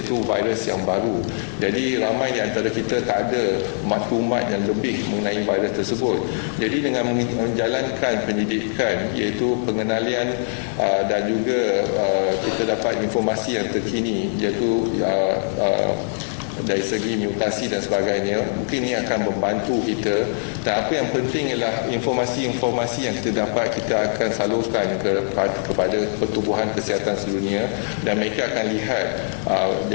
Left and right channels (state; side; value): silent; right; digital silence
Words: iaitu virus yang baru. Jadi ramai di antara kita tak ada maklumat yang lebih mengenai virus tersebut. Jadi dengan menjalankan pendidikan, iaitu pengenalian dan juga kita dapat informasi yang terkini, iaitu dari segi mutasi dan sebagainya. Mungkin ini akan membantu kita, dan apa yang penting ialah informasi-informasi yang kita dapat kita akan salurkan kepada pertubuhan kesihatan sedunia, dan mereka akan lihat.